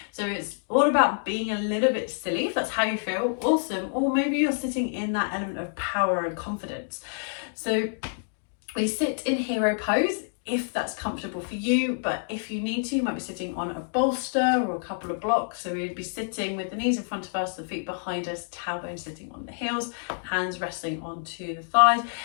So it's all about being a little bit silly, if that's how you feel. Awesome. Or maybe you're sitting in that element of power and confidence. So we sit in hero pose if that's comfortable for you, but if you need to, you might be sitting on a bolster or a couple of blocks. So we'd be sitting with the knees in front of us, the feet behind us, tailbone sitting on the heels, hands resting onto the thighs.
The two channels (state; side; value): silent; right; digital silence